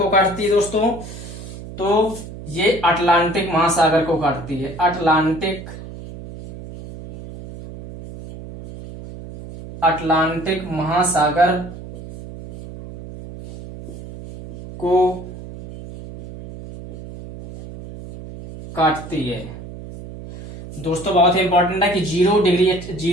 काटती है दोस्तों। तो ये अटलांटिक महासागर को काटती है। अटलांटिक महासागर को काटती है। दोस्तों बहुत ही इंपॉर्टेंट है कि 0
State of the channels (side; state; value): right; noise; hum, 13 dB below the sound